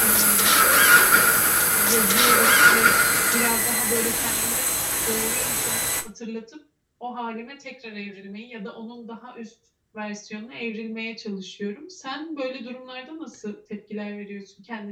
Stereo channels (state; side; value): identical; both; correlation 1.00